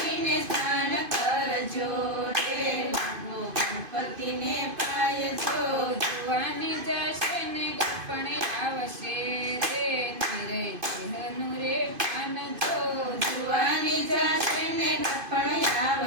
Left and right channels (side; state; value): left; late; 2.5 ms